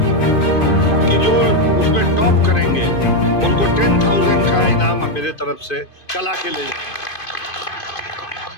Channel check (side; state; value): right; late; 2.5 ms